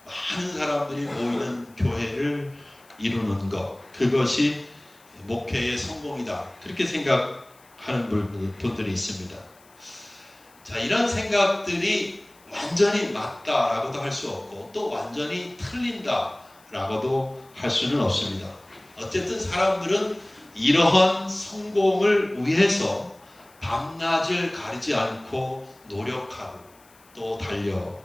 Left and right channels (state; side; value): noise; left; hiss, 28 dB below the sound